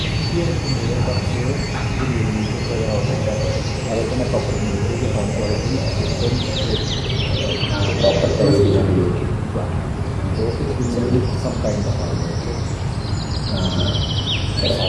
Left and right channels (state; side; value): identical; both; correlation 1.00